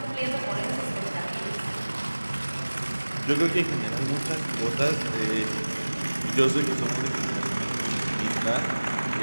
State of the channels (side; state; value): both; inverted; correlation -1.00